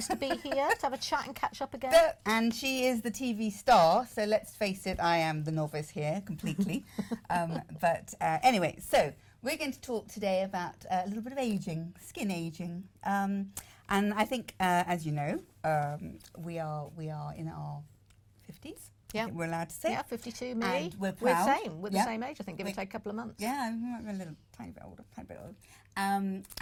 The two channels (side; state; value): both; identical; correlation 1.00